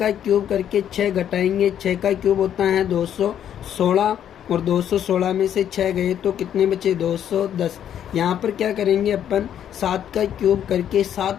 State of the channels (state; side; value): quieter; right; 9.8 dB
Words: क्यूब करके 6 घटाएंगे, 6 का क्यूब होता है 216 और 216 में से 6 गए तो कितने बचे, 210। यहाँ पर क्या करेंगे अपन, 7 का क्यूब करके